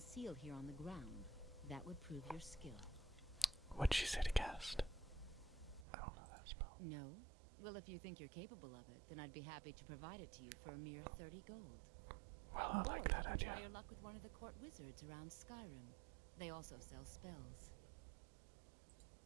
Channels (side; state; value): left; drops out; at 5.9 s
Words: seal here on the ground, that would prove your skill. What'd she say to cast? I don't know that spell. No? Well, if you think you're capable of it, then I'd be happy to provide it to you for a mere 30 gold. Well, I Or like you that can idea. try your luck with one of the court wizards around Skyrim. They also sell spells.